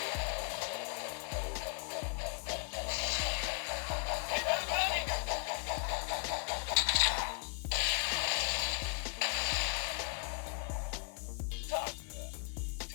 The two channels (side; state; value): right; quieter; 40.0 dB